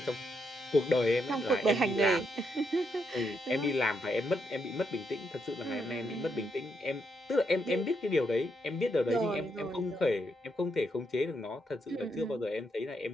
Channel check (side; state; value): both; normal; correlation 0.79